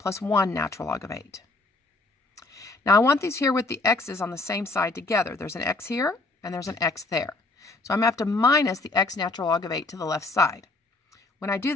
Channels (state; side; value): quieter; right; 3.3 dB